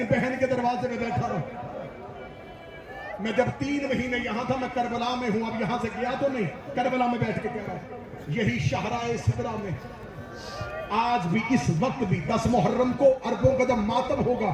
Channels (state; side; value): identical; both; correlation 1.00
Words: بہن کے دروازے میں بیٹھا رہا. میں جب 3 مہینے یہاں تھا، میں کربلا میں ہوں. اب یہاں سے گیا تو نہیں، کربلا میں بیٹھ کے کہہ رہا ہوں. یہی شاہراہ سدرہ میں آج بھی، اس وقت بھی 10 محرم کو اربوں کا جب ماتم ہوگا،